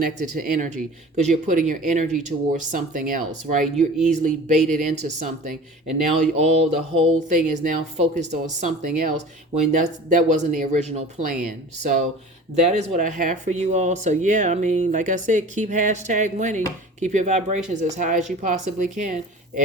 to energy, because you're putting your energy towards something else, right? You're easily baited into something, and now the whole thing is now focused on something else when that wasn't the original plan. So that is what I have for you all. So yeah, like I said, keep #winning. Keep your vibrations as high as you possibly can.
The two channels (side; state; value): both; normal; correlation 0.40